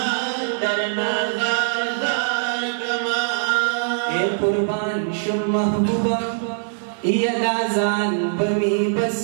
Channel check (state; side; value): silent; left; digital silence